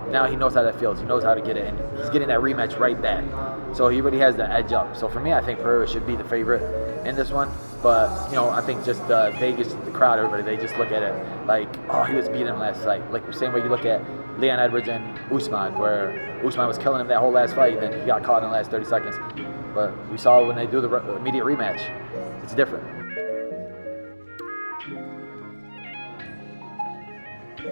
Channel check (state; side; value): inverted; both; correlation -1.00